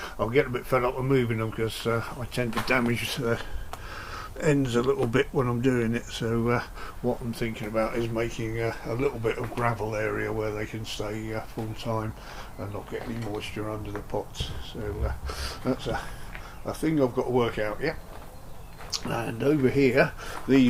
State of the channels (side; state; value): both; identical; correlation 1.00